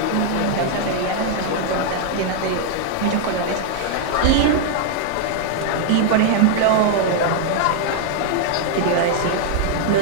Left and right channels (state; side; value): different; both; correlation 0.00